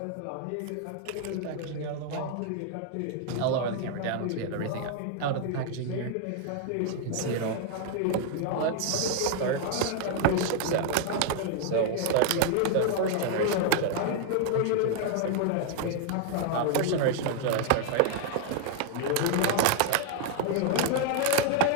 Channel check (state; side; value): different; both; correlation 0.00